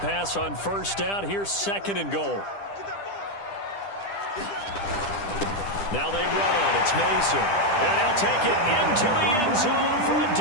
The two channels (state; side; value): late; right; 10 ms